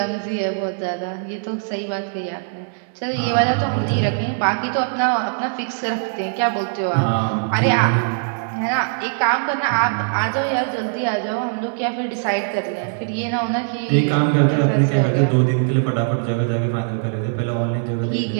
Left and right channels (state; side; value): silent; left; digital silence